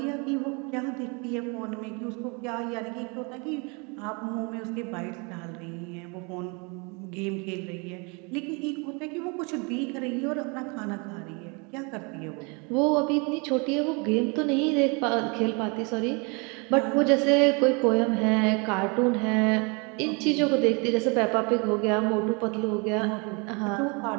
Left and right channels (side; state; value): left; quieter; 31.6 dB